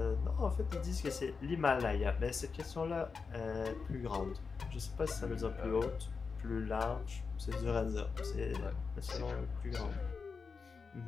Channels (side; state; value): right; quieter; 5.0 dB